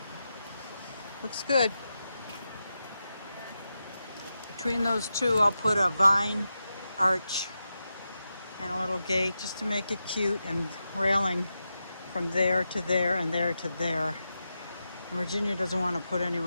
Looks good. Between those two, I'll put a vine arch and a little gate just to make it cute, and railing from there to there and there to there. Virginia doesn't want to put any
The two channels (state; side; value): inverted; both; correlation -0.89